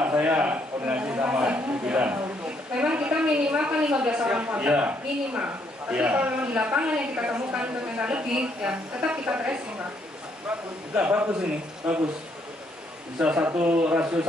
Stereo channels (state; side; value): normal; both; correlation 0.71